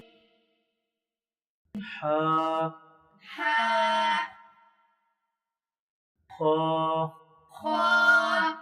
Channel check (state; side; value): identical; both; correlation 1.00